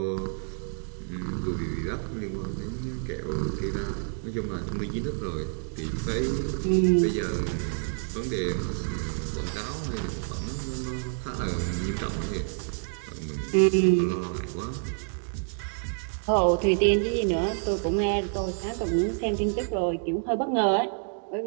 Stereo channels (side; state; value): left; silent; 59 dB below the other